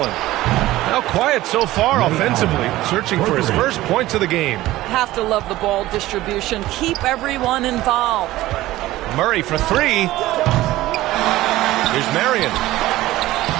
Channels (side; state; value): left; quieter; 16.5 dB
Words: Now quiet so far offensively, searching for his first points of the game. Have to love the ball distribution. Keep everyone involved. Murray for three. Here's Marion.